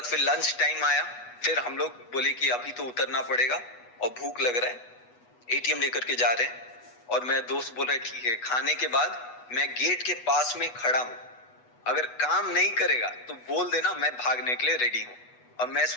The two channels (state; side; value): late; right; 8.2 ms